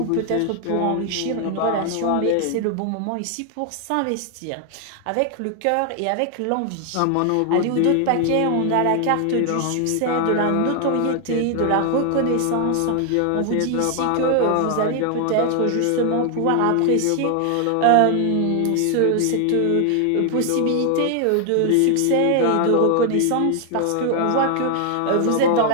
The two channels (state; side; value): different; both; correlation 0.00